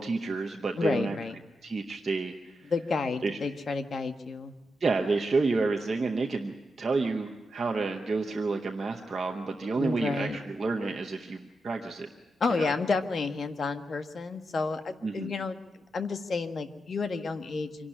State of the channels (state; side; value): normal; both; correlation 0.86